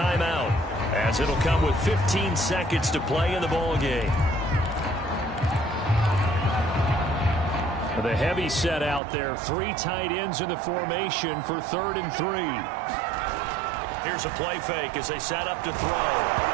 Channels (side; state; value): left; drops out; at 9.0 s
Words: as it'll come with 15 seconds to play in the ball game. The heavy set out there. 3 tight ends in the formation for 3rd and 3. Here's a play fake as they set up to throw.